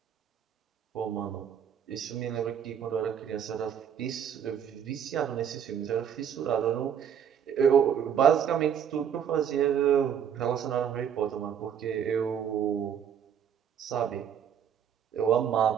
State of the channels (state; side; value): quieter; left; 8.5 dB